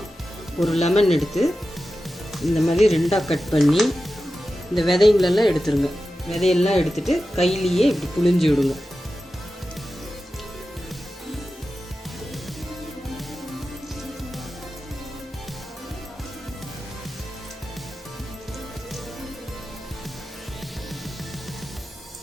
ஒரு லெமன் எடுத்து இந்த மாதிரி 2ஆக கட் பண்ணி இந்த விதைங்களெல்லாம் எடுத்துருங்க. விதையெல்லாம் எடுத்துட்டு கையிலேயே இப்படி புழிஞ்சு விடுங்க.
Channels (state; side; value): normal; both; correlation 0.93